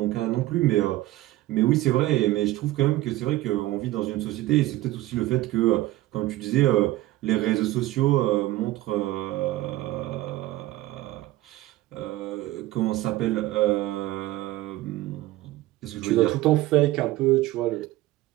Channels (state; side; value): quieter; left; 16.7 dB